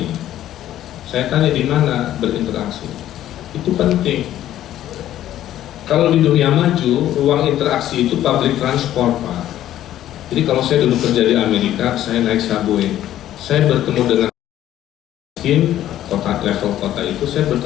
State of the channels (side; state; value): right; quieter; 12.6 dB